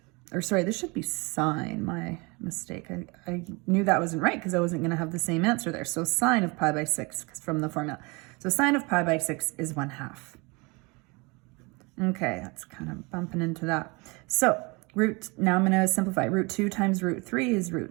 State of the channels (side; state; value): left; quieter; 27.3 dB